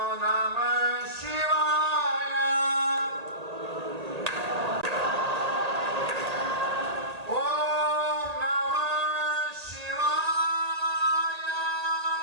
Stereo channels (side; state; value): left; late; 1.8 ms